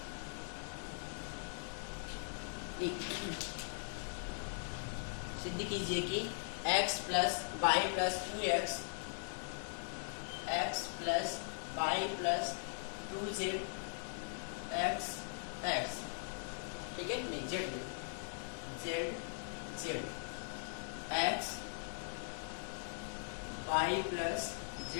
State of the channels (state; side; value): silent; right; digital silence